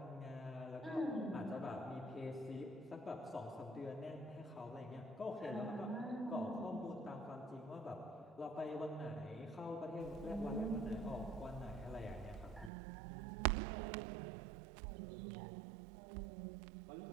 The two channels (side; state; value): left; drops out; at 12.7 s